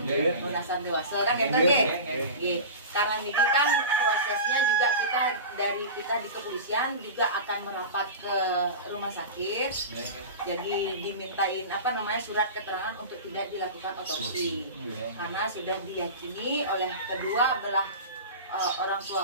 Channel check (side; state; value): both; inverted; correlation -0.30